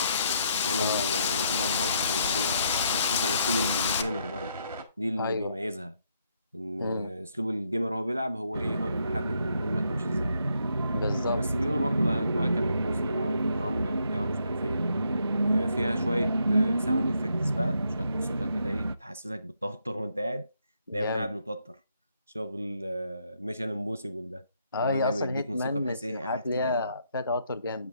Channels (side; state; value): both; inverted; correlation -0.74